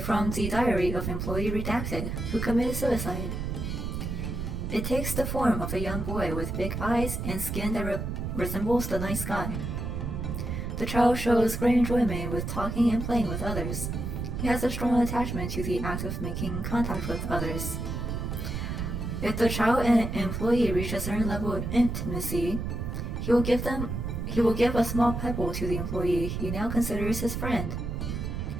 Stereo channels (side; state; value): right; noise; rumble, 4 dB below the sound